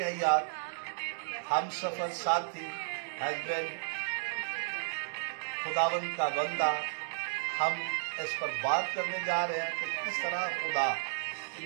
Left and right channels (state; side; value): silent; left; digital silence